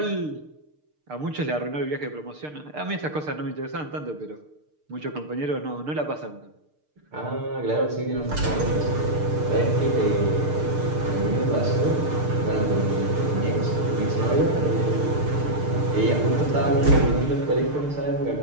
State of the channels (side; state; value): left; late; 6.6 ms